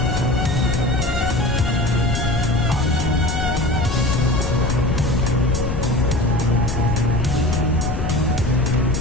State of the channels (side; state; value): left; noise; rumble, 2 dB below the sound